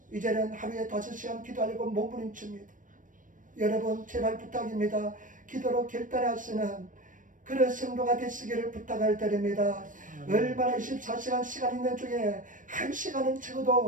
이제는 하루에 5시간 기도하려고 몸부림칩니다. 여러분 제발 부탁입니다. 기도로 결단하시는 그런 성도가 되시기를 부탁을 드립니다. 얼마나 24시간 시간 있는 중에 1시간은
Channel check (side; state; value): left; late; 0.38 ms